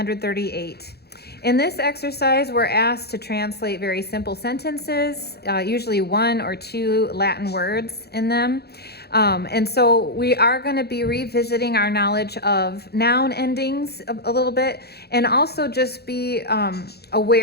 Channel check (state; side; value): late; right; 0.47 ms